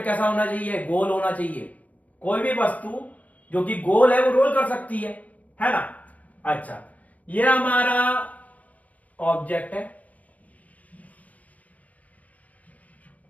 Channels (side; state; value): right; late; 0.073 ms